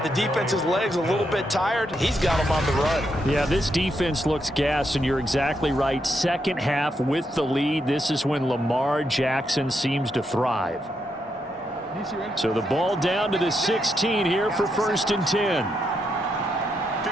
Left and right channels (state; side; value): normal; both; correlation 0.81